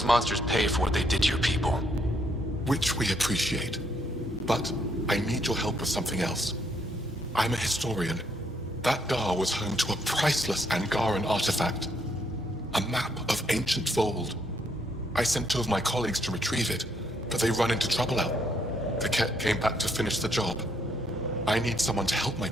monsters pay for what they did to your people. Which we appreciate. But I need your help with something else. I'm a historian. That Dar was home to a priceless Angaran artifact. A map of ancient Vold. I sent 2 of my colleagues to retrieve it, but they run into trouble out. The Kett came back to finish the job. I need someone to help my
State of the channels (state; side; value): normal; both; correlation 0.72